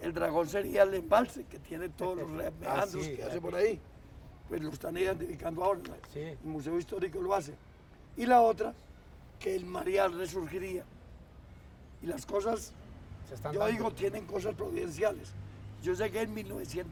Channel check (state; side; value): identical; both; correlation 1.00